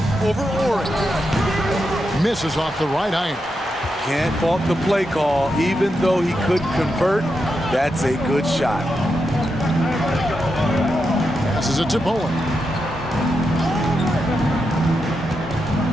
Over Ori. Misses off the right iron. Can't fault the play call. Even though he couldn't convert, that's a good shot. Passes it to Bowen.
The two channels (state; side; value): normal; both; correlation 0.86